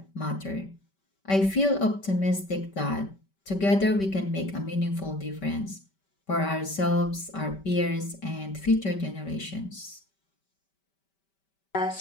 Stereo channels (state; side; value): late; right; 5.2 ms